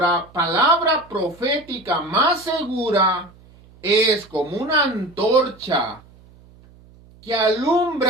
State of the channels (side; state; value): right; noise; hum, 26 dB below the sound